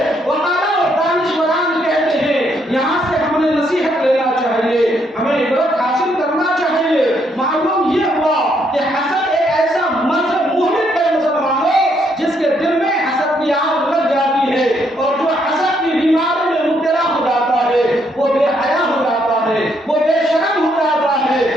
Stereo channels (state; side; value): normal; both; correlation 0.73